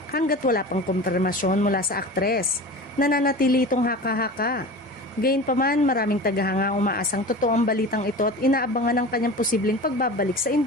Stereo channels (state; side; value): normal; both; correlation 0.34